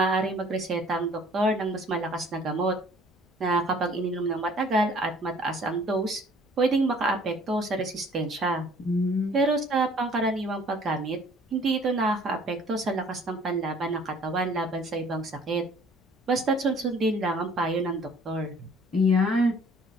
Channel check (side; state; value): both; normal; correlation 0.54